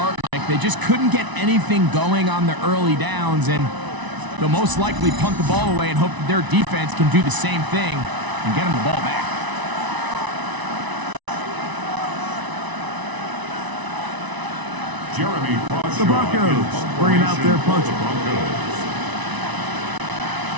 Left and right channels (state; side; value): late; left; 1.0 ms